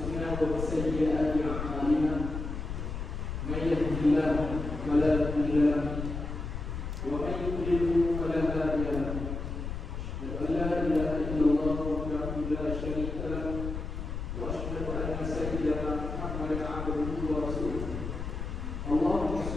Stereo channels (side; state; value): left; noise; rumble, 5 dB below the sound